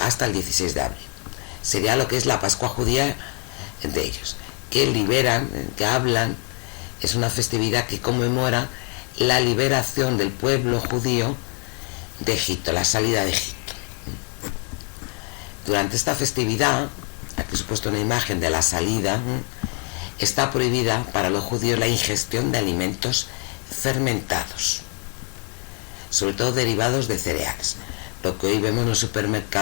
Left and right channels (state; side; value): quieter; right; 38.1 dB